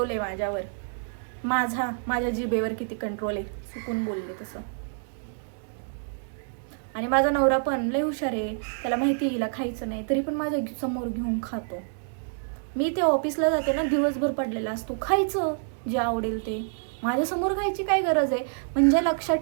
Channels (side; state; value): left; silent; digital silence